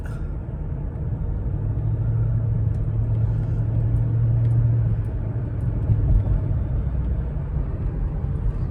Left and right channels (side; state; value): both; identical; correlation 1.00